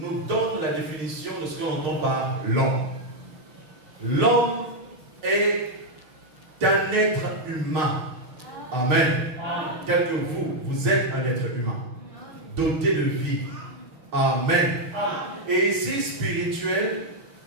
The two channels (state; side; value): late; left; 6.6 ms